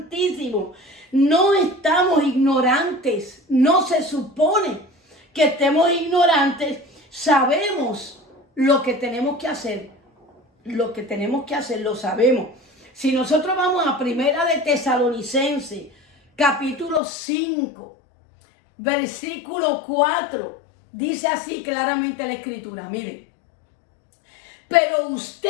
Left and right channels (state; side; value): drops out; right; at 17.0 s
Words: No estamos ignorantes. No se supone que estemos ignorantes. Sabemos lo que tenemos que hacer. Lo que tenemos que hacer lo sabemos. Si nosotros vamos a Primera de Tesalonicenses, capítulo 5, versículo 4, dice así claramente la Escritura. Miren. Pero